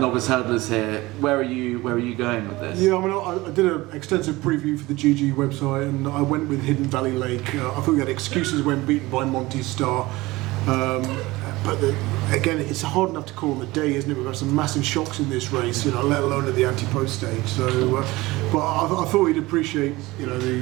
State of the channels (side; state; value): left; quieter; 20.3 dB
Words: hurdlers here. Where are you going with this? Yeah, I mean, I did an extensive preview for the GG website, and I went with Hidden Valley Lake. I thought we had excuses when beaten by Monty Star. But again, it's hard enough to call on the day, isn't it? We've had some massive shocks in this race, you know, let alone at the anti-post stage. So, but I thought he'd appreciate, you know,